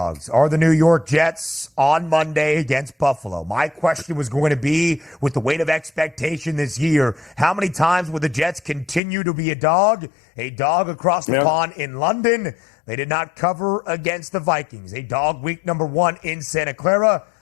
are the New York Jets on Monday against Buffalo. My question was going to be, with the weight of expectation this year, how many times will the Jets continue to be a dog? A dog across the pond in London. They did not cover against the Vikings. A dog week number 1 in Santa Clara.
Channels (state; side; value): drops out; right; at 9.0 s